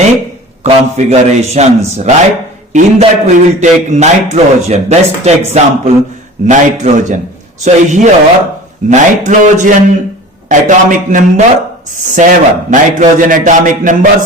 configurations. Right? In that we will take nitrogen. Best example, nitrogen. So here nitrogen atomic number 7. Nitrogen atomic number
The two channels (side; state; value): both; normal; correlation 0.39